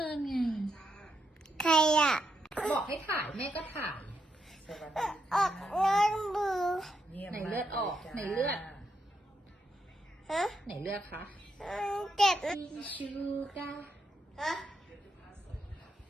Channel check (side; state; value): both; normal; correlation 0.81